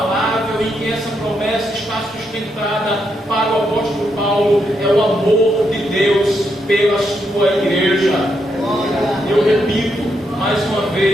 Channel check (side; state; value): both; normal; correlation 0.80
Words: em que essa promessa está sustentada para o apóstolo Paulo, é o amor de Deus pela sua igreja. Eu repito mais uma